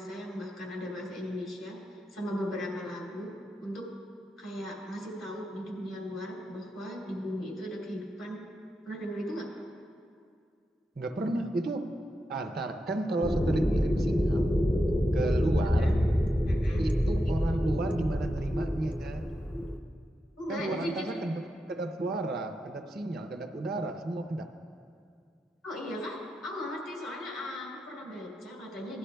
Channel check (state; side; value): normal; both; correlation 0.87